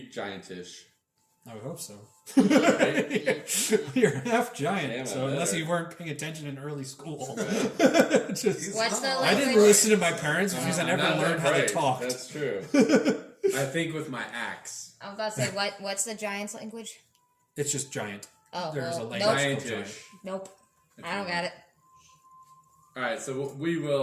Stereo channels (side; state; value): both; identical; correlation 1.00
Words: giantish. I would hope so. Right? You're half giant, Damn, I so unless better. you weren't paying attention in early school. Just, What's the I didn't language? listen to my parents because I never Not learned how they right. talked. That's true. I think with my axe. I was about to say, what's the giant's language? It's just giant. Oh, There's a well, language nope. called giant. Giantish. Nope. I don't got it. All right, so we